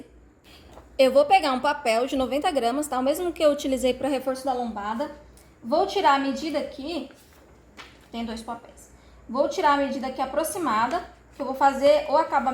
Eu vou pegar um papel de 90 gramas, tá? O mesmo que eu utilizei para reforço da lombada. Vou tirar a medida aqui. Tem 2 papéis. Vou tirar a medida aqui aproximada, que eu vou fazer o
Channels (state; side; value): identical; both; correlation 1.00